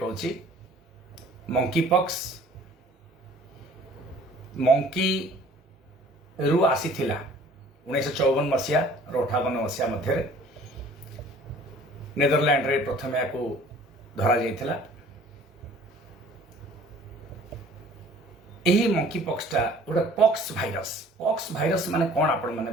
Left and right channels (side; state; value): both; normal; correlation 0.51